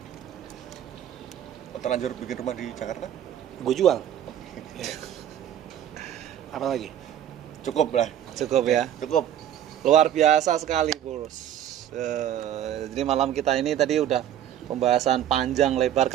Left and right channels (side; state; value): left; quieter; 10.8 dB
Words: Terlanjur bikin rumah di Jakarta? Gue jual. Apa lagi? Cukup lah. Cukup ya. Cukup. Luar biasa sekali, Bos. Jadi malam kita ini tadi udah pembahasan panjang, lebar,